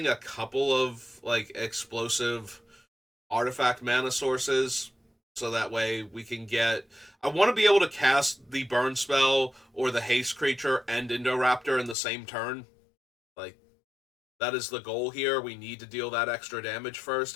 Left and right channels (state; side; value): drops out; right; at 12.0 s